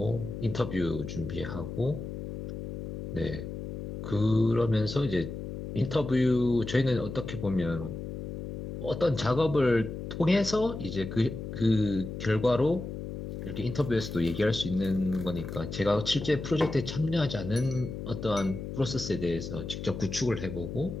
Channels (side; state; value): left; noise; hum, 7 dB below the sound